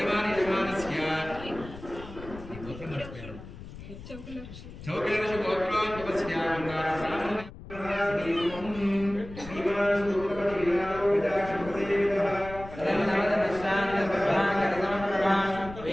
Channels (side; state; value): left; noise; rumble, 14 dB below the sound